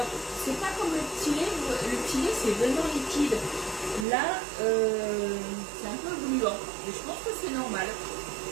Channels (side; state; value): left; drops out; at 4.0 s